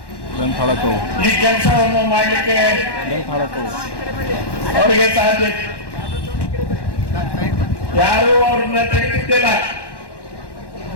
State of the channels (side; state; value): right; late; 1.1 ms